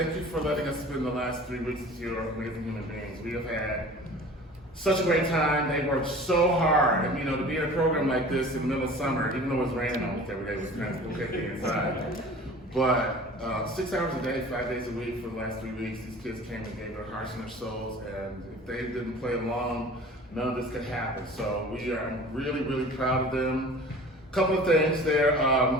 you for letting us spend the last 3 weeks with your amazing human beings. We have had such a great time. They worked so hard. And to be in a program like this in the middle of summer, even though it was raining almost every day, was kind of okay being inside. But 6 hours a day, 5 days a week for the last 3 weeks, these kids came and gave their hearts and their souls. And if they didn't play along, none of this could happen. So I'm really, really proud of them. Couple of things, they're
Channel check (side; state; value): both; normal; correlation 0.42